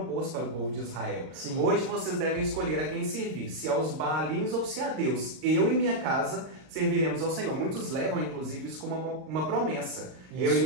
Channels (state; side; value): late; left; 38 ms